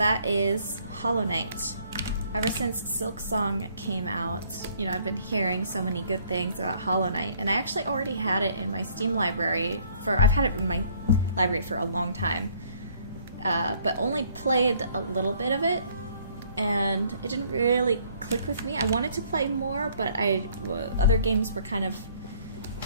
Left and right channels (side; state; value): both; inverted; correlation -0.60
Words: is Hollow Knight. Ever since Silksong came out, you know, I've been hearing so many good things about Hollow Knight, and I actually already had it in my Steam library I've had it in my library for a long time, but only played a little bit of it, and it didn't really click with me. I wanted to play more, but other games were kind of